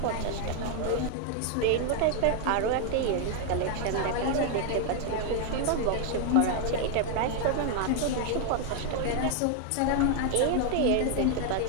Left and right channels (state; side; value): different; both; correlation 0.00